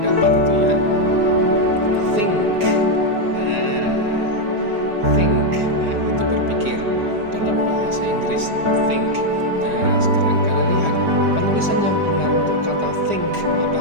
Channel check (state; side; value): late; left; 4.9 ms